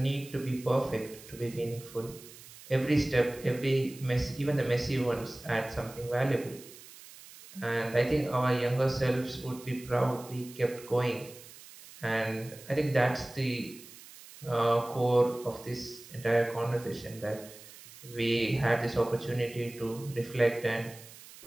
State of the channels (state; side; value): noise; right; hiss, 18 dB below the sound